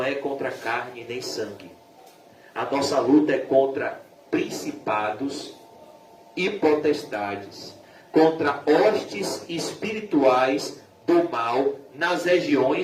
é contra carne nem sangue. A nossa luta é contra principados e potestades, contra hostes espirituais do mal nas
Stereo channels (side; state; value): both; identical; correlation 1.00